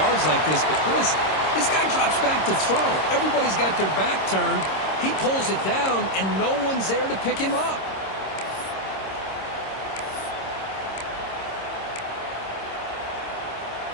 like this, but Chris, this guy drops back to throw. Everybody's got their back turned. He pulls it down, and no one's there to pick him up.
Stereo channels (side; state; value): right; late; 26 ms